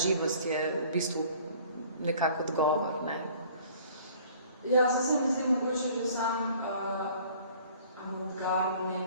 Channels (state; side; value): inverted; both; correlation -0.52